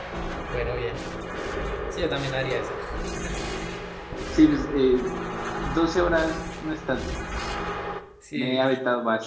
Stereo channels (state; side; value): identical; both; correlation 1.00